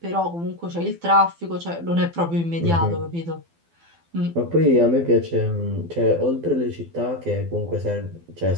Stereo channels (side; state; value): left; late; 12 ms